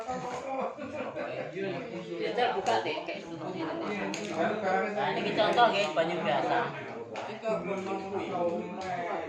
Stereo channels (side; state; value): both; identical; correlation 1.00